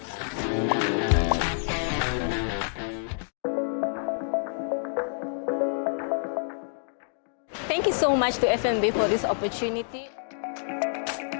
Thank you so much to FNB for this opportunity.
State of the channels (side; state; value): right; silent; digital silence